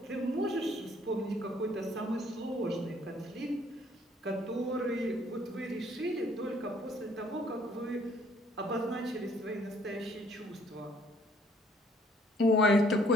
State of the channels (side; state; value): both; normal; correlation 0.62